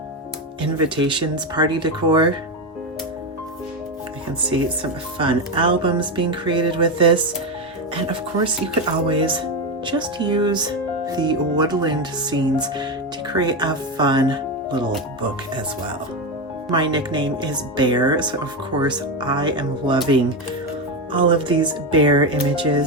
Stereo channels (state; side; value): normal; both; correlation 0.12